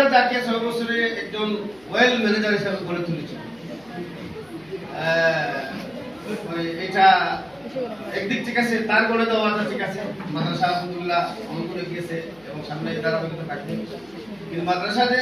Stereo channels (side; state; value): left; noise; hum, 29 dB below the sound